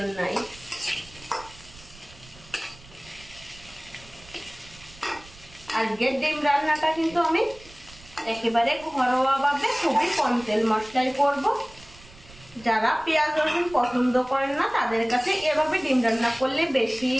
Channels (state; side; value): noise; right; rumble, 22 dB below the sound